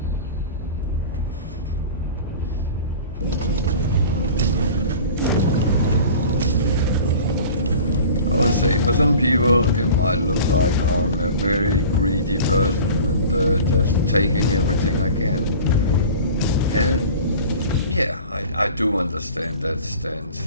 I would say for some people it might look like I'm a very greedy person and just taking everything I can. And yeah, I do understand that stance.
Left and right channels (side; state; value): both; inverted; correlation -0.40